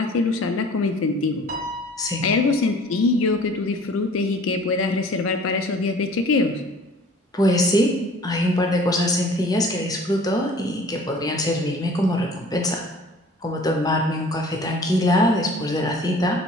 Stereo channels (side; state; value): both; normal; correlation 0.49